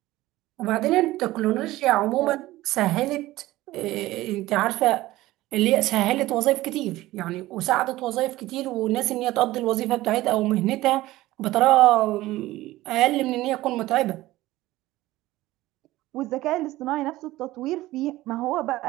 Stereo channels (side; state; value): left; quieter; 17.1 dB